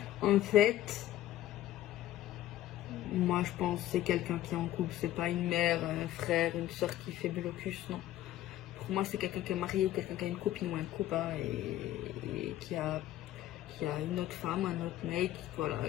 En fait, moi je pense que c'est quelqu'un qui est en couple, c'est pas une mère, un frère, une soeur qui fait blocus, non. Pour moi c'est quelqu'un qui est marié, quelqu'un qui a une copine ou un copain et qui a une autre femme, un autre mec, voilà,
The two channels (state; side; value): quieter; right; 13.8 dB